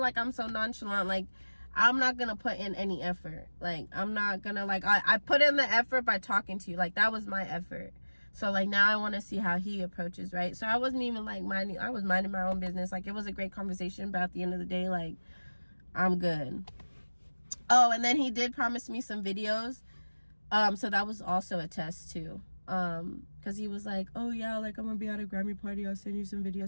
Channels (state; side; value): inverted; both; correlation -1.00